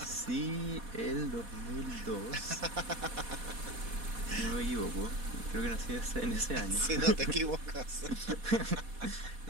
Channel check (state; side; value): late; left; 4.1 ms